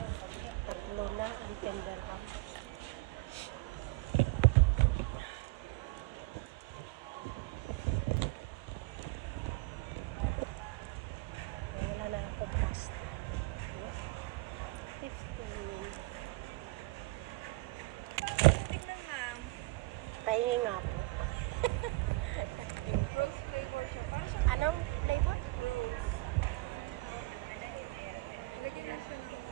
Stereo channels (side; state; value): left; quieter; 23.2 dB